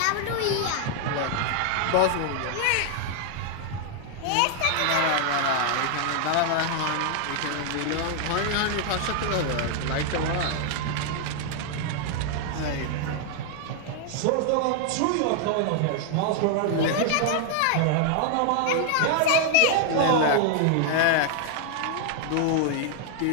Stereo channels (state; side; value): different; both; correlation 0.00